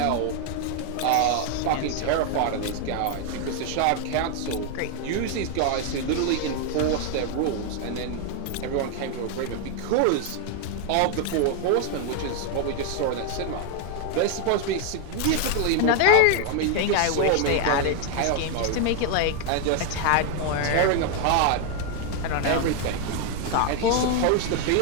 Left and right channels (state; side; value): different; both; correlation 0.00